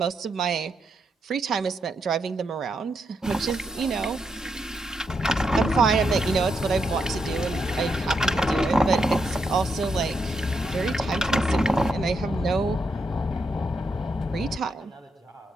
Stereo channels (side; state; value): both; normal; correlation 0.81